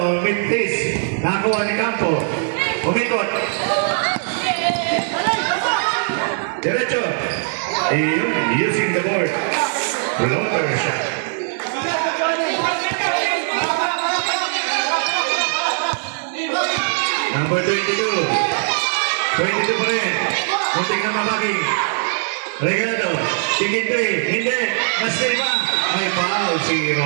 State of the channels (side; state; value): left; silent; 61 dB below the other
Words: Mintis, nakuha ni Campo, umikot. Diretso, using the board, floater shot. Number 22, 22 pa rin, muntik na mabagi. Regalado, tingin 3, hindi, mas ba? May foul si